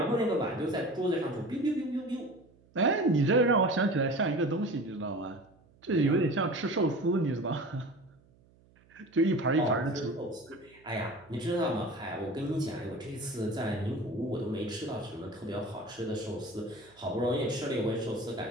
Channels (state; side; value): noise; right; hum, 30 dB below the sound